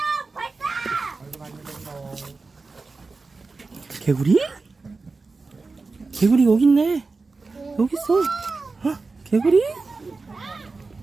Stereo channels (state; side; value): quieter; left; 4.0 dB